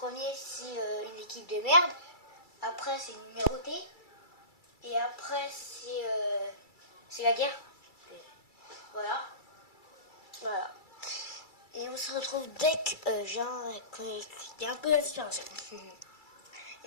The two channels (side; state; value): right; late; 2.3 ms